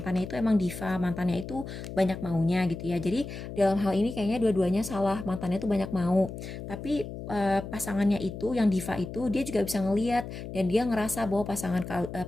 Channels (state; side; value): noise; left; hum, 9 dB below the sound